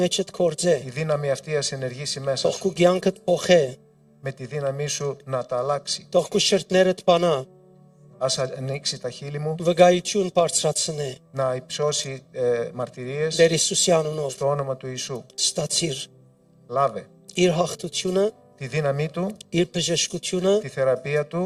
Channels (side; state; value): both; identical; correlation 1.00